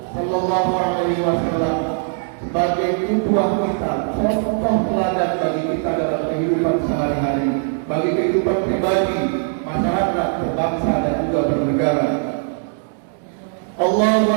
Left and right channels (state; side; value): silent; left; 65 dB below the other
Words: sallallahu alaihi wasallam sebagai qudwah kita, contoh teladan bagi kita dalam kehidupan sehari-hari, bagi kehidupan pribadi, masyarakat, berbangsa dan juga bernegara. Allahu